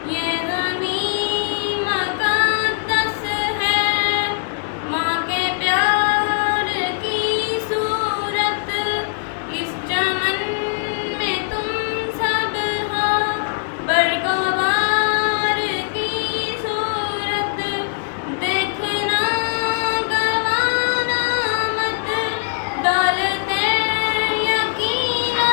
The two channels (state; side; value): silent; right; digital silence